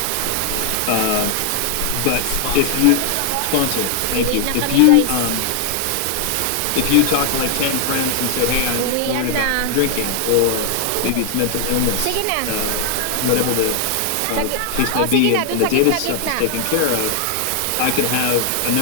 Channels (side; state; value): both; different; correlation 0.00